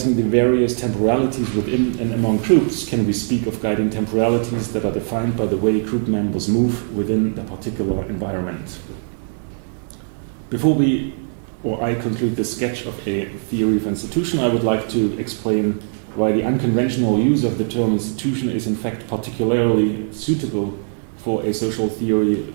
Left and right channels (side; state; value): left; silent; digital silence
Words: the various temporalities within and among groups can we speak of guiding temporalities that are defined by the way group members move within the particular environment. Before I conclude this sketch of a theory of institution, I would like to explain why the unconventional use of the term institution is in fact particularly suitable for a social theory